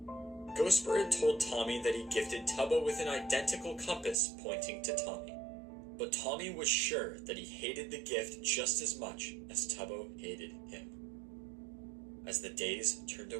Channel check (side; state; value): left; drops out; at 4.2 s